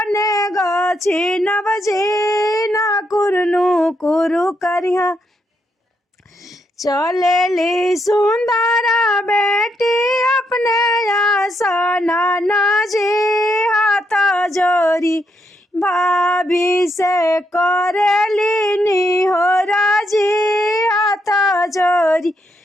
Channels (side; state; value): both; normal; correlation 0.78